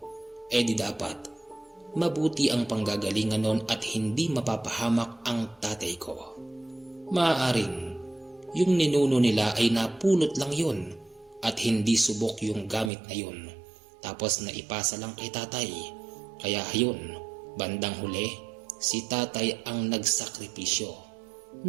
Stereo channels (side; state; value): left; drops out; at 12.9 s